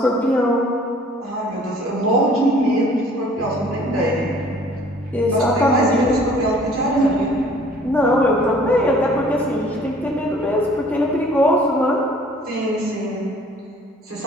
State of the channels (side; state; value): both; normal; correlation 0.54